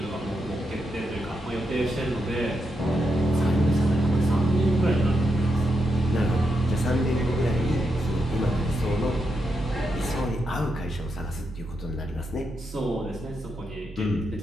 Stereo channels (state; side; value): normal; both; correlation 0.84